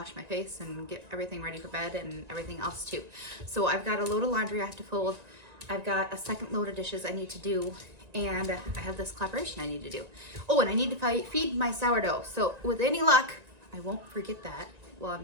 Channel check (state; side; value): late; left; 1.9 ms